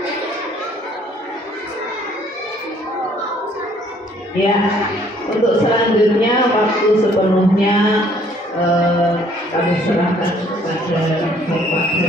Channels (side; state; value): both; normal; correlation 0.61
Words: Ya, untuk selanjutnya waktu sepenuhnya kami serahkan kepada Bapak